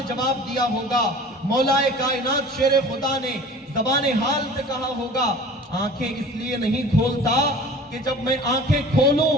جواب دیا ہوگا، مولا کائنات شیر خدا نے زبان حال سے کہا ہوگا، آنکھیں اس لیے نہیں کھولتا کہ جب میں آنکھیں کھولوں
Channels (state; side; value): normal; both; correlation 0.42